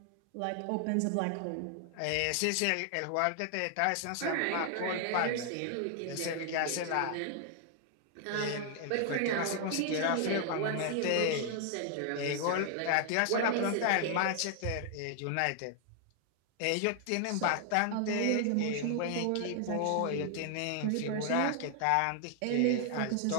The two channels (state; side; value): different; both; correlation 0.00